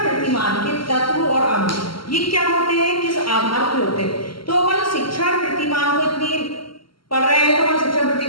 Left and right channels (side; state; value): right; late; 0.74 ms